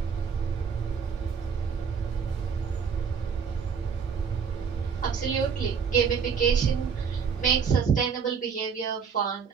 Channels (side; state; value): left; quieter; 6.4 dB